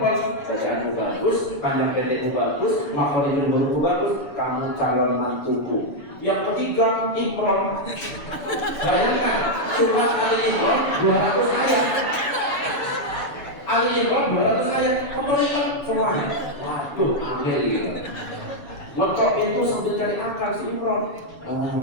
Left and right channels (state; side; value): late; right; 7.0 ms